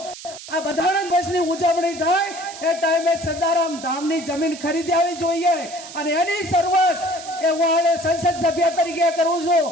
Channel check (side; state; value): right; noise; hiss, 14 dB below the sound